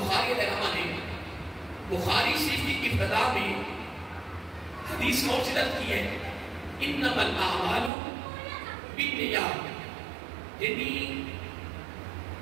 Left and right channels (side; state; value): left; drops out; at 7.9 s